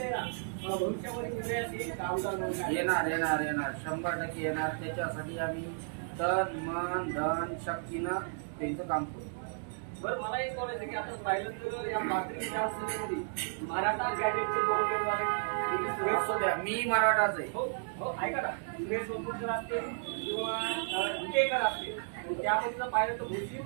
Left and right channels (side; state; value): left; silent; digital silence